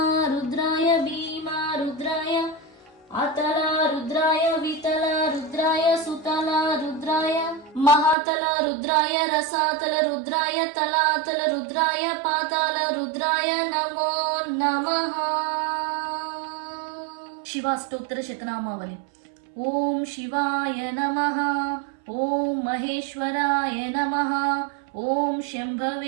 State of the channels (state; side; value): drops out; left; at 8.2 s